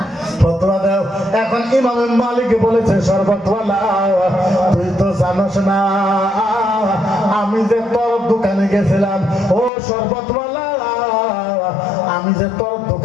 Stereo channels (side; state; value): right; drops out; at 9.7 s